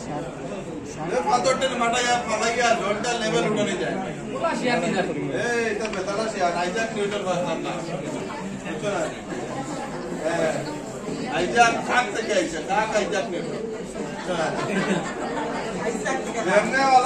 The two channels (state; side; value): identical; both; correlation 1.00